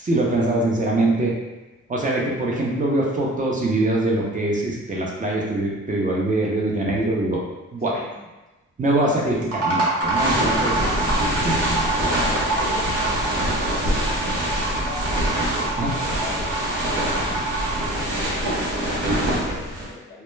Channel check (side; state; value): both; normal; correlation 0.40